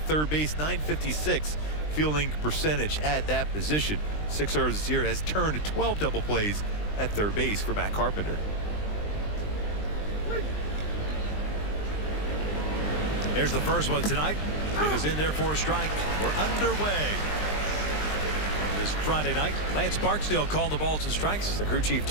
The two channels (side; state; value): right; late; 20 ms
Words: third base. .956 fielding percentage at that position. 6 errors this year, has turned 12 double plays at third base for Matt Carpenter. Here's the first one tonight. It is in there for a strike. We're underway. This Friday night, Lance Barksdale called the balls and strikes. The crew chief